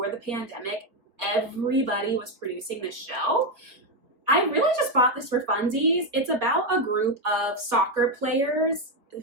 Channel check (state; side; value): late; left; 4.1 ms